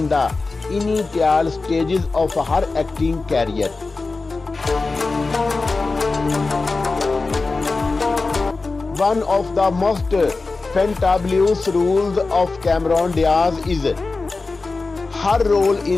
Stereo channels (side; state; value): right; quieter; 3.8 dB